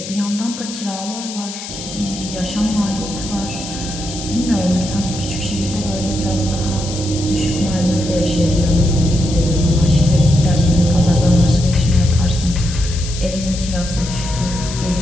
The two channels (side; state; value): left; noise; hiss, 10 dB below the sound